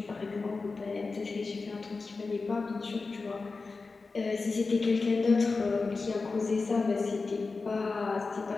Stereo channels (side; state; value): right; quieter; 4.1 dB